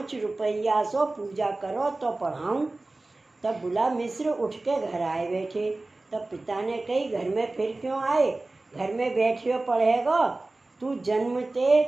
रुपया सो पूजा करो तो पढ़ाऊँ। तब बुला मिश्र उठ के घर आए बैठे। तब पिता ने कही, घर में फिर क्यों आए, घर में बैठियो पढ़ेगा, तू जन्मते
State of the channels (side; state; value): left; quieter; 3.1 dB